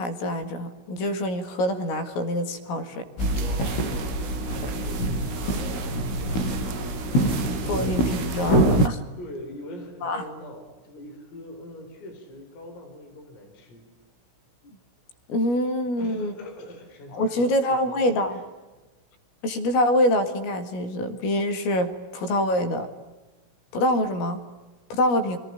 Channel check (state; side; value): late; right; 16 ms